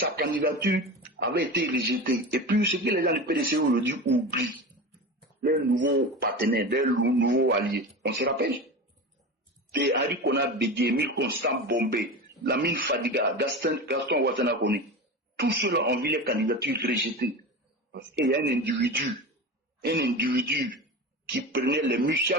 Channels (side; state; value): both; normal; correlation 0.27